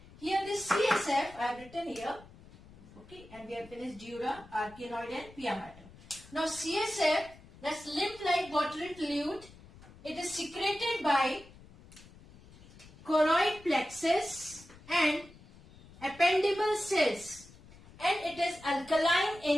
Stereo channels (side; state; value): left; noise; rumble, 21 dB below the sound